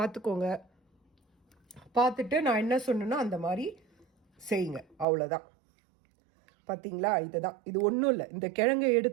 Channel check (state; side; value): drops out; left; at 5.1 s